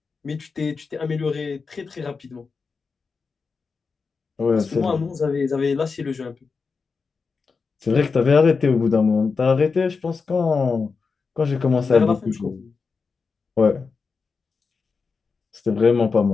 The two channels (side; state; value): right; quieter; 4.9 dB